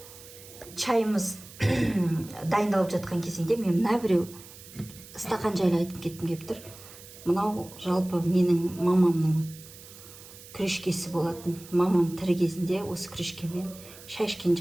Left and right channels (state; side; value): noise; right; hiss, 18 dB below the sound